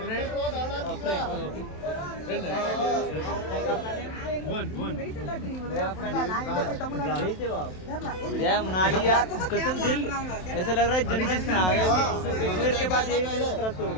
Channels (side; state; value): right; late; 27 ms